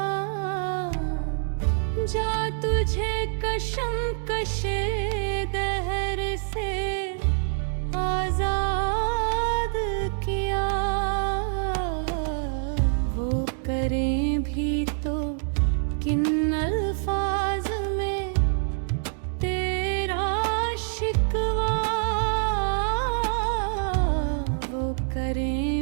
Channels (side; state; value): left; silent; digital silence